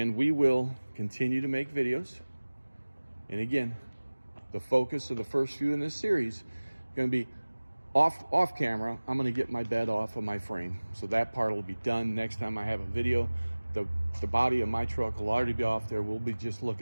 we will continue to make videos. And again, the focus of the first few in this series going to be off camera. I'm going to get my bed off of my frame, so that part will be done. Next time I have a video, the body of my truck will already be off there. We'll be just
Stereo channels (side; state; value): both; inverted; correlation -1.00